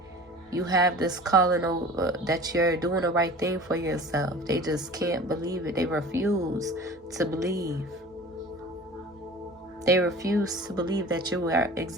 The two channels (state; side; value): normal; both; correlation 0.40